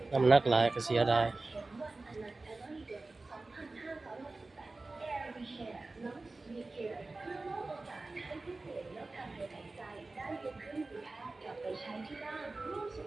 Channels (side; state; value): left; quieter; 3.3 dB